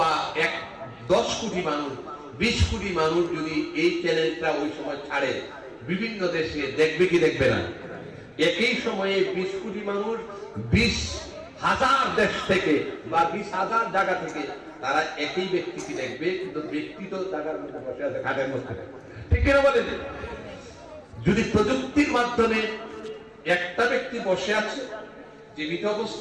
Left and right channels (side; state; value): both; identical; correlation 1.00